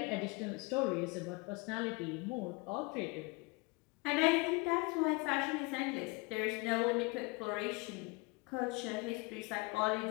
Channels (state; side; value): quieter; right; 26.8 dB